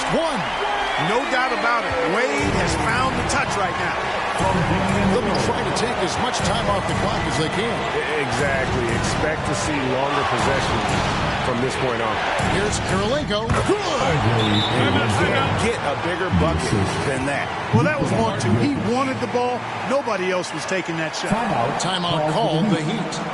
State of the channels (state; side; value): identical; both; correlation 1.00